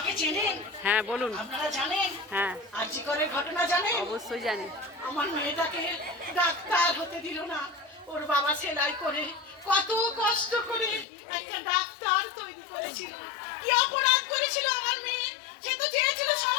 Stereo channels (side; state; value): right; drops out; at 11.1 s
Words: চেনেন? হ্যাঁ বলুন। আপনারা জানেন হ্যাঁ আরজিকরের ঘটনা জানেন? অবশ্যই জানি। আমার মেয়েটাকে ডাক্তার হতে দিল না। ওর বাবা সেলাই করে কত কষ্ট করে একটা ডাক্তার তৈরি করেছিল। কি অপরাধ করেছিল আমার মেয়ে? সে তো চেয়েছিল